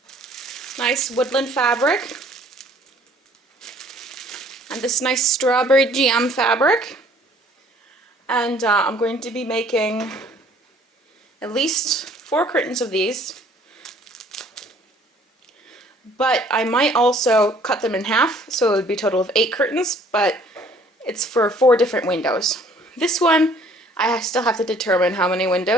nice woodland fabric and this nice strawberry jam fabric, and I'm going to be making at least 4 curtains of these, but I might also cut them in half, so it would be a total of 8 curtains, but it's for 4 different windows. This one, I still have to determine how many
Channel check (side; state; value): both; normal; correlation 0.57